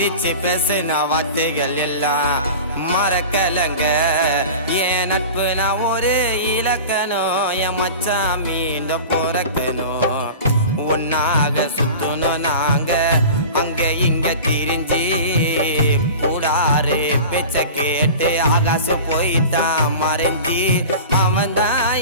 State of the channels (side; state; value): both; inverted; correlation -0.35